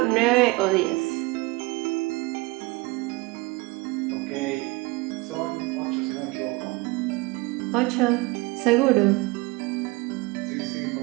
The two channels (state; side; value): quieter; left; 24.0 dB